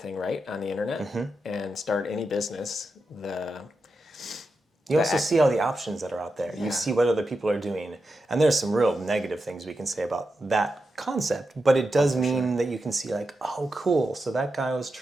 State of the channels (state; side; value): normal; both; correlation 0.88